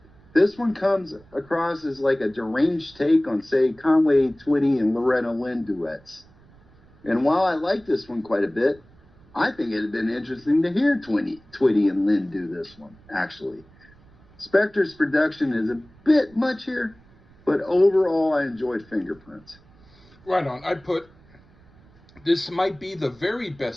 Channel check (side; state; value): right; noise; rumble, 27 dB below the sound